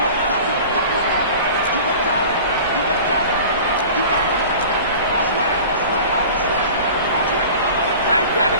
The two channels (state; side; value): inverted; both; correlation -0.40